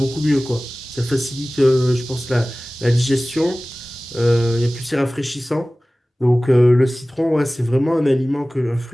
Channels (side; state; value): both; normal; correlation 0.98